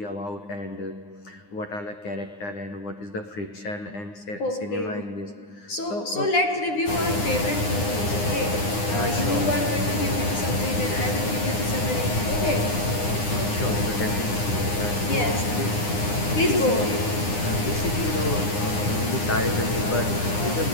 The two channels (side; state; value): right; late; 9.8 ms